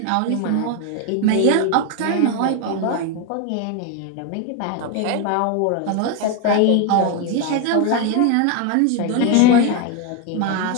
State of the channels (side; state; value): both; different; correlation 0.01